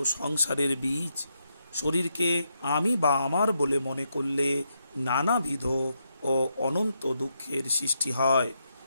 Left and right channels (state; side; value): inverted; both; correlation -0.81